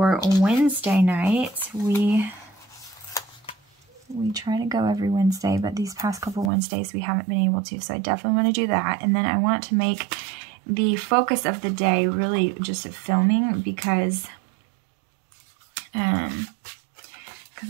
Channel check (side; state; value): left; drops out; at 6.5 s